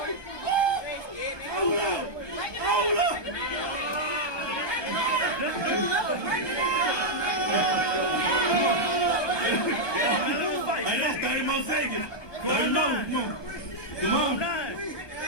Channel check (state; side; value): late; right; 1.2 ms